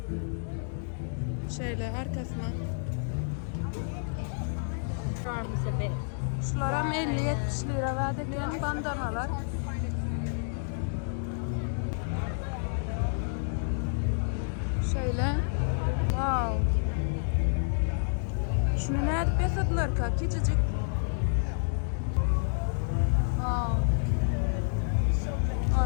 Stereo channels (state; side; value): silent; right; digital silence